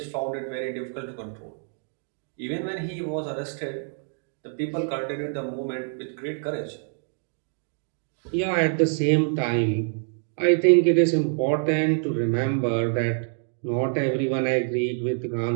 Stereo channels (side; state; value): left; silent; 60 dB below the other